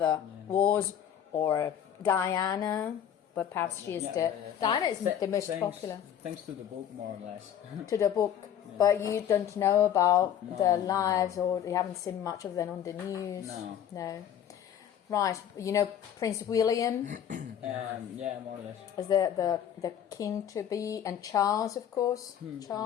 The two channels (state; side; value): quieter; right; 9.6 dB